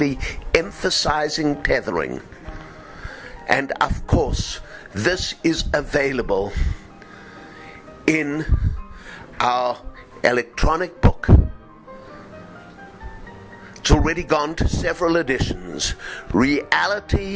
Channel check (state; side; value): identical; both; correlation 1.00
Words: emphasizing tethering. And of course, this is available in our electronic book. It's already gone to several editions.